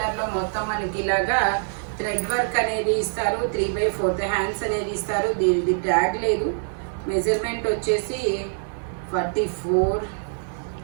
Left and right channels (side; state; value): left; silent; 62 dB below the other